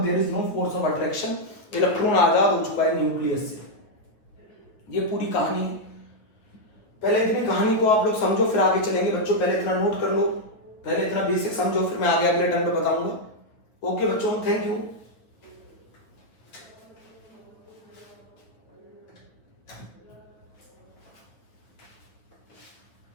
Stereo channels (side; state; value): right; late; 9.1 ms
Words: there is no force of attraction, electron आजाद हो चुका है न्यूक्लियस से। ये पूरी कहानी है। पहले इतनी कहानी को आप लोग समझो फिर आगे चलेंगे बच्चों। पहले इतना नोट कर लो, पहले इतना बेसिक समझो, फिर मैं आगे अगले टर्म पे बताऊंगा। ओके बच्चों, थैंक यू।